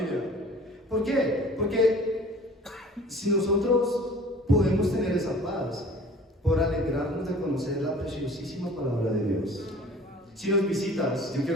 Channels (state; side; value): normal; both; correlation 0.47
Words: ¿Por qué? Porque si nosotros podemos tener esa paz por alegrarnos de conocer la preciosísima palabra de Dios. Si nos visitas, yo